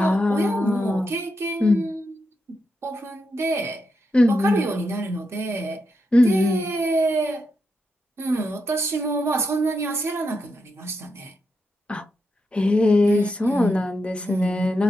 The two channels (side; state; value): both; normal; correlation 0.85